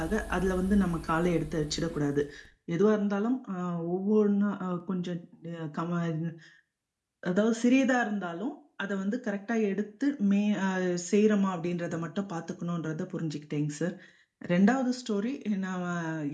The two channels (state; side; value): identical; both; correlation 1.00